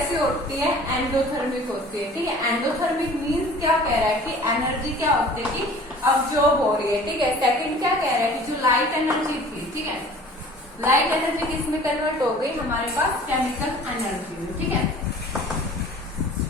होती है? एंडोथर्मिक होती है। ठीक है, एंडोथर्मिक मींस क्या कह रहा है कि एनर्जी क्या होती है कि अब्जॉर्ब हो रही है। ठीक है, सेकंड क्या कह रहा है कि जो लाइट एनर्जी थी, ठीक है, लाइट एनर्जी किसमें कन्वर्ट हो गई? हमारे पास केमिकल एनर्जी में। ठीक है,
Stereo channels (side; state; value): both; normal; correlation 0.47